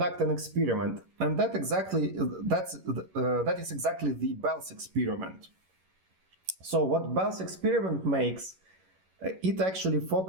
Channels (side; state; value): left; late; 11 ms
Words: an experiment, and that is exactly the Bell's experiment. So what Bell's experiment makes, it actually